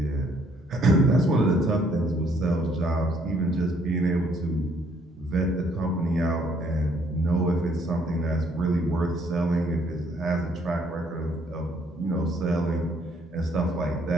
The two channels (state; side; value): normal; both; correlation 0.66